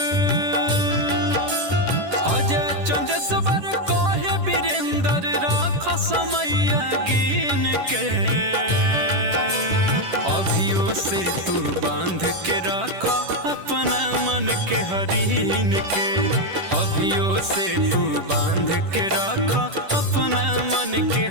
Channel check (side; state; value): left; late; 10 ms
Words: अजय चंदेश्वर कहे वीरेंद्र राख समय गिन के, अभियो से तू बांध के रख अपना मन के हरीन के, अभियो से तू बांध के रख अपना मन के